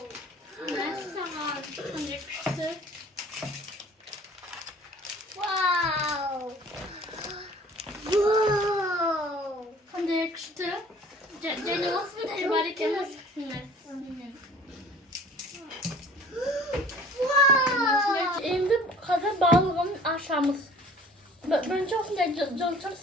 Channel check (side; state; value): both; normal; correlation 0.49